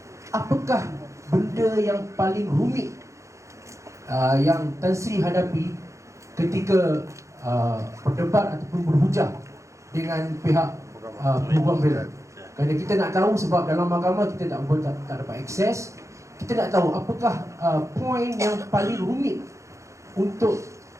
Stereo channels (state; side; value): late; left; 0.15 ms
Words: apakah benda yang paling rumit yang Tan Sri hadapi ketika berdebat ataupun berhujah dengan pihak peguam bela? Kerana kita nak tahu, sebab dalam mahkamah kita tak dapat akses. Kita nak tahu apakah poin yang paling rumit untuk